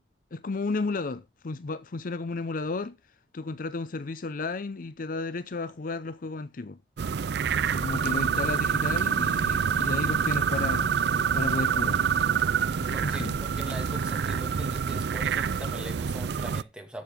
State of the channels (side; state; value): left; quieter; 4.1 dB